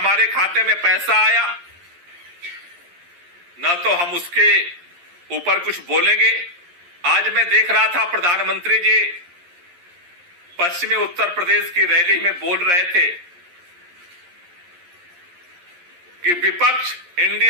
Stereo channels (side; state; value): left; late; 11 ms